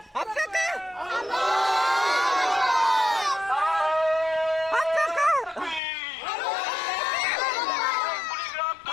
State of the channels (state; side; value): drops out; right; at 5.8 s